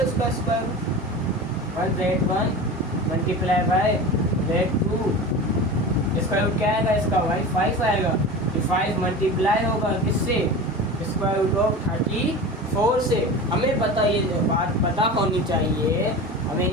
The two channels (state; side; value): normal; both; correlation 0.31